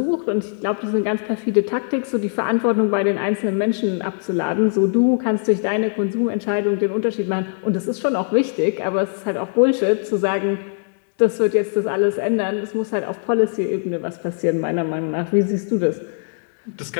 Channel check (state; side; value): silent; right; digital silence